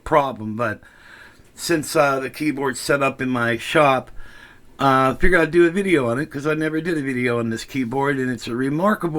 But since the keyboard's set up in my shop, I figured I'd do a video on it because I never did a video on this keyboard, and it's a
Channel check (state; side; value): identical; both; correlation 1.00